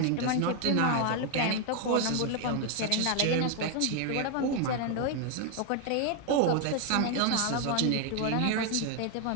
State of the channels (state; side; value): different; both; correlation 0.01